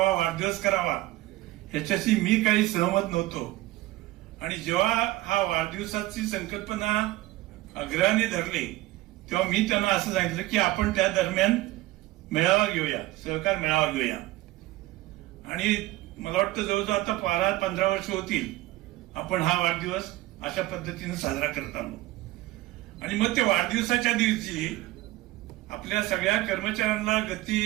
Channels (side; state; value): left; quieter; 18.0 dB